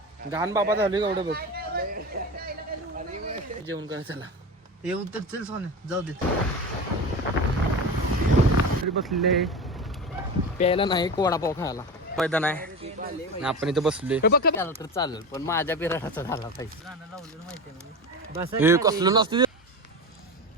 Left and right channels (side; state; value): both; normal; correlation 0.26